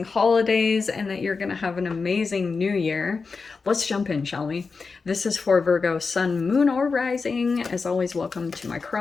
holidays and that you're gonna have an amazing new year. Let's jump in, shall we? This is for Virgo, Sun, Moon, or Rising. As always, welcome to my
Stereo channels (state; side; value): quieter; right; 4.6 dB